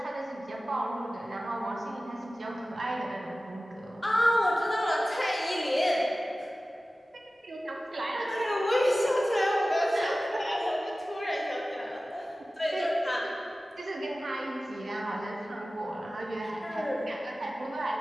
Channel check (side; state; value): both; normal; correlation 0.96